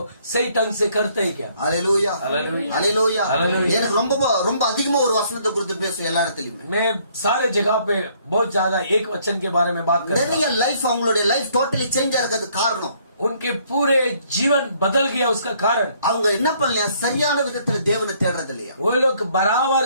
सही ढंग से करते हैं क्या? அல்லேலூயா. அல்லேலூயா. அல்லேலூயா. அல்லேலூயா. எனக்கு ரொம்ப அதிகமா ஒரு வசனத்தை குறித்து பேசுவேன் எல்லா இடத்துலயுமே. मैं सारे जगह पे बहुत ज्यादा एक वचन के बारे में बात करता हूं. நிறைய லைஃப் அவங்களுடைய லைஃப் டோட்டலி சேஞ்ச் ஆகிறது காரணம் उनके पूरे जीवन बदल गया. उसका कारण அவங்க என்ன பண்ணலையா? சரியான விதத்துல தேவனை தேடுறது இல்லையா? वो लोग बराबर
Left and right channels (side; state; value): both; inverted; correlation -0.65